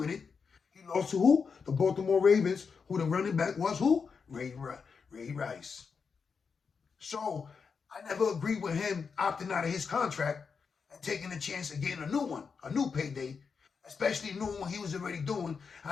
it. He lost to who? The Baltimore Ravens, who the running back was who? Ray Rice. So I never agreed with him opting out of his contract and taking a chance of getting a new one, a new payday, especially knowing what he was already doing,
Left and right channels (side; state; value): right; quieter; 5.6 dB